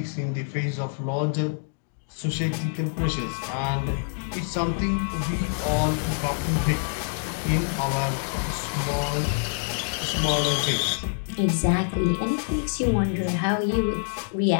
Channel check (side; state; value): right; silent; digital silence